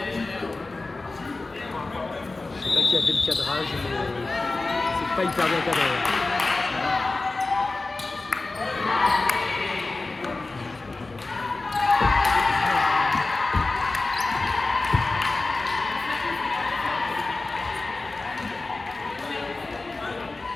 Je sais pas qui a fait le cadrage, mais c'est pas hyper bien cadré.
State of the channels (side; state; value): right; quieter; 3.4 dB